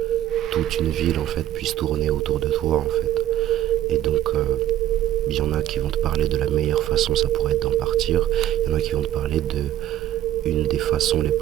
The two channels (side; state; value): left; quieter; 12.9 dB